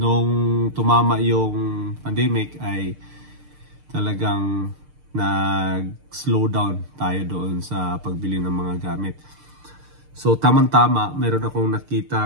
tumama yung pandemic ay talagang nag-slow down tayo doon sa pagbili ng mga gamit. So tamang-tama, meron akong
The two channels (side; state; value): left; late; 6.6 ms